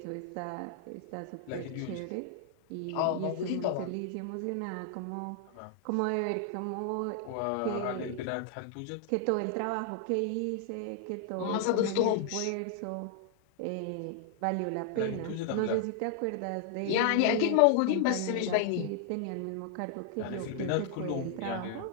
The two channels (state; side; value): different; both; correlation 0.00